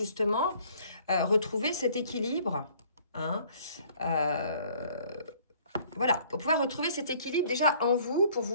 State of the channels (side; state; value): both; inverted; correlation -0.58